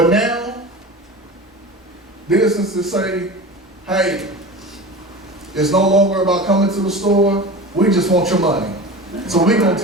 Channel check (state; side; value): normal; both; correlation 0.32